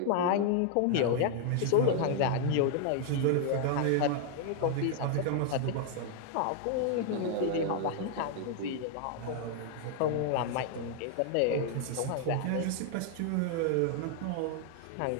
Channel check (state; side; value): different; both; correlation 0.00